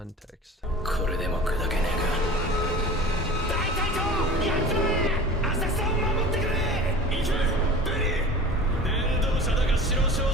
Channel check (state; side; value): normal; both; correlation 0.38